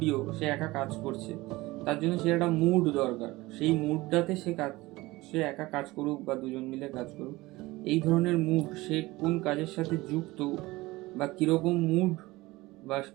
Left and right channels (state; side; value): quieter; left; 20.1 dB